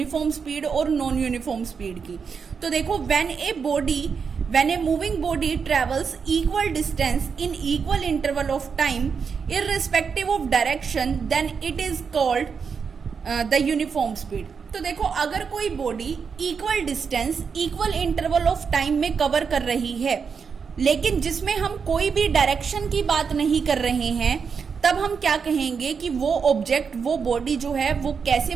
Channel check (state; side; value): quieter; left; 6.0 dB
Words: स्पीड और नॉन यूनिफॉर्म स्पीड की। तो देखो when a moving body travels equal distance in equal interval of time irrespective of direction, then it is called the uniform speed. तो देखो अगर कोई body equal distance equal interval of time में cover कर रही है लेकिन जिसमें हम कोई भी डायरेक्शन की बात नहीं कर रहे हैं, तब हम क्या कहेंगे कि वो ऑब्जेक्ट, वो बॉडी जो है वो कैसे